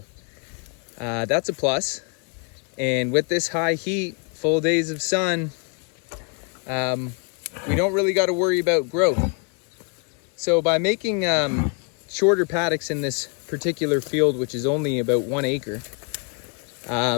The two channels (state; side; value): quieter; right; 36.8 dB